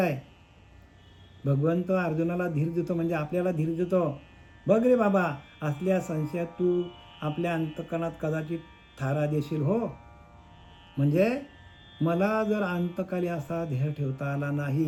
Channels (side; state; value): both; identical; correlation 1.00